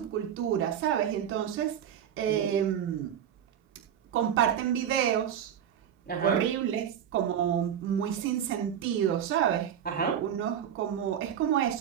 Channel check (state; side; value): quieter; left; 9.3 dB